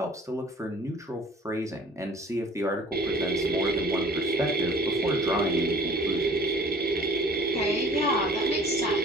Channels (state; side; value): normal; both; correlation 0.49